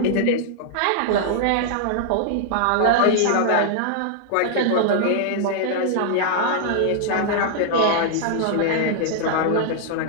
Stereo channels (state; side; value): different; both; correlation -0.01